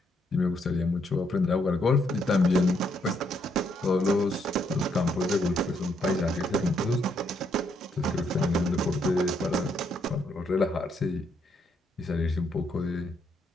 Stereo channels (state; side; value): normal; both; correlation 0.74